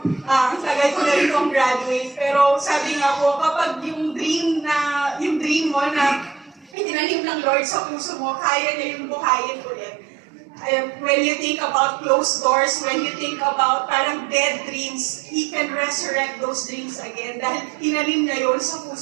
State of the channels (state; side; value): drops out; left; at 6.7 s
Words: ang tagal ko na rin pong graduate. Pero sabi nga po, kapag yung dream mo na itinanim ng Lord sa puso mo, kaya niya yung buhayin ulit. When you think about closed doors, when you think about parang dead dreams, He can resurrect those dreams again dahil tinanim niya yun sa